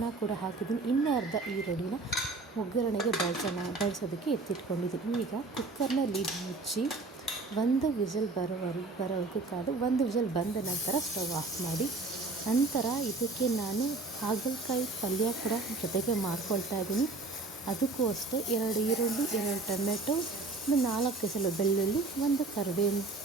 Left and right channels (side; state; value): left; quieter; 3.6 dB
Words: ಕೂಡ ಹಾಕಿದ್ದೀನಿ. ಇನ್ನೂ ಅರ್ಧ ಈರುಳ್ಳಿನ ಒಗ್ಗರಣೆಗೆ ಬಳಸೋದಕ್ಕೆ ಎತ್ತಿಟ್ಕೊಂಡಿದ್ದೀನಿ. ಈಗ ಕುಕ್ಕರ್ನ ಲಿಡ್ ಮುಚ್ಚಿ 1 ವಿಸಿಲ್ ಬರೋವರೆಗೂ ಕಾದು 1 ವಿಸಿಲ್ ಬಂದ ನಂತರ ಸ್ಟವ್ ಆಫ್ ಮಾಡಿ. ನಂತರ ಇದಕ್ಕೆ ನಾನು ಹಾಗಲಕಾಯಿ ಪಲ್ಯ ಕೂಡ ಜೊತೆಗೆ ಮಾಡ್ಕೊಳ್ತಾ ಇದ್ದೀನಿ. ಅದಕ್ಕೂ ಅಷ್ಟೇ 2 ಈರುಳ್ಳಿ, 2 ಟೊಮೆಟೊ, 4 ಎಸಳು ಬೆಳ್ಳುಳ್ಳಿ, 1 ಕರಿಬೇವಿನ